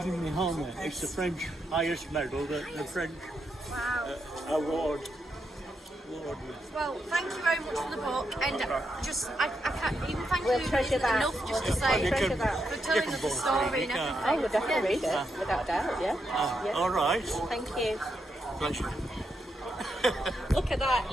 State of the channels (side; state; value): both; normal; correlation 0.82